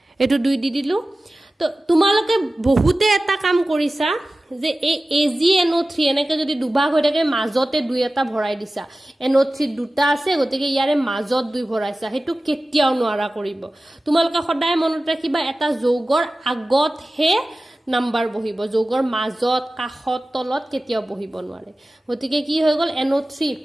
এটো 2 দি দিলু তো তোমালোকে বহুতে এটা কাম কৰিছা যে এই AgNO3 এনেকে যদি দুভাগ হৈ থাকে মাজতে 2 এটা ভৰাই দিছা NO3 দুটা আছে গতিকে ইয়াৰে মাজত 2 ভৰাইছা হেতু কেতিয়াও নোৱাৰা কৰিব তোমালোকে সদায় মনত ৰাখিবা এটা যৌগৰ আগত হে নাম্বাৰ বহিব যৌগৰ মাজত কাখত তলত কেতিয়াও বহিব নোৱাৰে গতিকে কি হৈ গল NO3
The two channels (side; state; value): both; normal; correlation 0.96